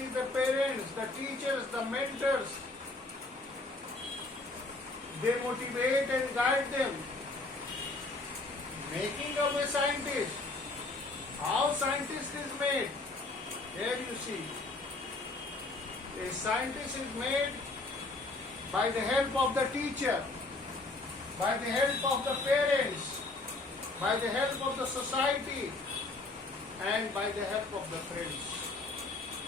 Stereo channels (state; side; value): quieter; right; 3.2 dB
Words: the parents, the teachers, the mentors. They motivate and guide them. Making of a scientist. How scientist is made? Here you see. A scientist is made by the help of the teacher, by the help of the parents, by the help of the society, and by the help of the friends.